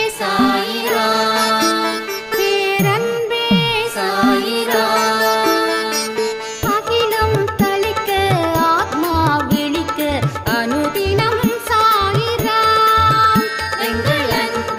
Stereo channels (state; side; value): identical; both; correlation 1.00